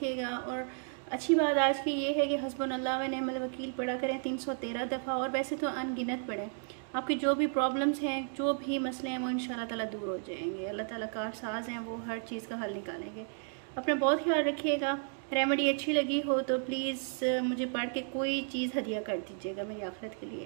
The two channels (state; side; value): silent; left; 56 dB below the other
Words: और अच्छी बात आज की ये है कि हस्बुनल्लाह व निअमल वकील पढ़ा करें 313 दफ़ा, और वैसे तो अनगिनत पढ़ें। आपकी जो भी प्रॉब्लम्स हैं, जो भी मसले हैं, वो इंशाल्लाह ताला दूर हो जाएंगे। अल्लाह ताला कारसाज हैं, वो हर चीज़ का हल निकालेंगे। अपना बहुत ख्याल रखिएगा। रेमेडी अच्छी लगी हो तो प्लीज़ मुझे पढ़ के कोई चीज़ हदिया कर दीजिएगा मेरी आखिरत के